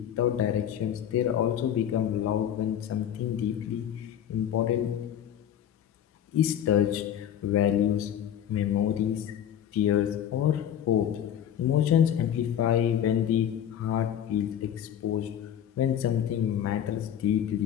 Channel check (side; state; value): right; quieter; 10.0 dB